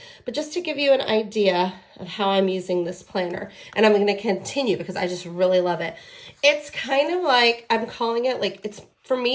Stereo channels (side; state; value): both; identical; correlation 1.00